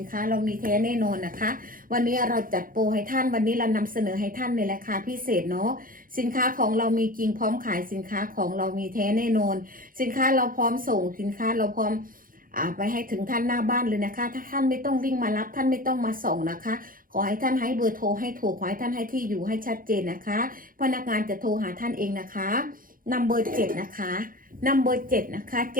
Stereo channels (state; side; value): late; left; 0.41 ms